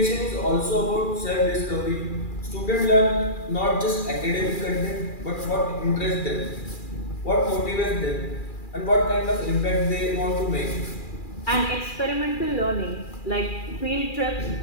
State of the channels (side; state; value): right; late; 2.4 ms